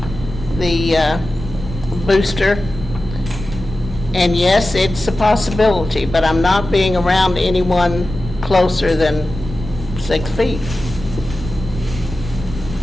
booster. And yes, it's a possibility, but I'm not being around anyone closer than 6 feet.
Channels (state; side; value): normal; both; correlation 0.94